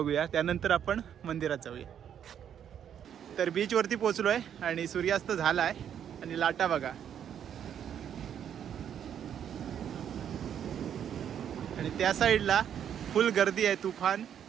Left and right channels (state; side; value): quieter; left; 9.1 dB